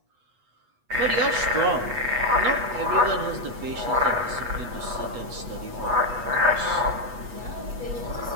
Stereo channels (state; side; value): late; left; 8.2 ms